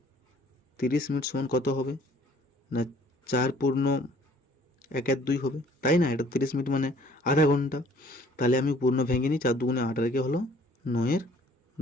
30 মিনিট সমান কত হবে না? 4 পূর্ণ 1/2 হবে, তাই না? এটা 30 মিনিট মানে আধা ঘন্টা। তাহলে আমি পূর্ণ ভেঙে নিই, 4 দুগুণে 8 রেখে হলো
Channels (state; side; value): normal; both; correlation 0.56